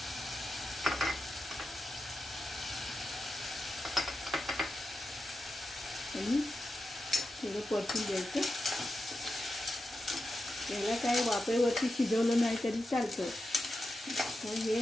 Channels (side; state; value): both; normal; correlation 0.90